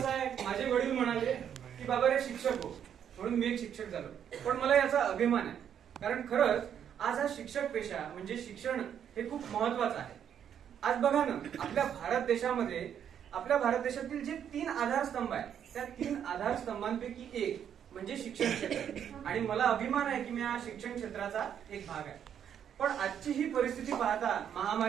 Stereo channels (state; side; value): quieter; left; 8.9 dB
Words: आहे, माझे वडील म्हणाले की बाबा रे शिक्षक हो, म्हणून मी एक शिक्षक झालो. पण मला याचा अभिमान आहे, कारण खरंच आज हा शिक्षक पेशा म्हणजे शिक्षण हे खूप महत्वाचं आहे. आज बघा ना, आपल्या भारत देशातील जे 3 आधारस्तंभ आहेत, त्या 3 आधारस्तंभांपैकी एक म्हणजे शिक्षण क्षेत्र. आणि मला अभिमान आहे की मी या शिक्षण क्षेत्राचा एक भाग आहे. पण आजची ही परिस्थिती पाहता,